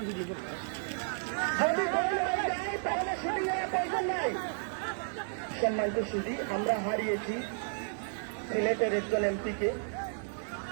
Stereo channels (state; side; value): silent; left; 56 dB below the other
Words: যদি গোল হয়ে যায় তাহলে শুটিং এর প্রয়োজন নাই। সম্মানিত সুধী, আমরা হারিয়েছি সিলেটের একজন এমপিকে,